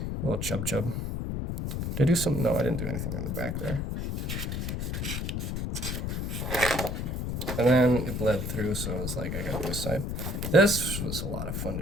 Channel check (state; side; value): noise; left; rumble, 2 dB below the sound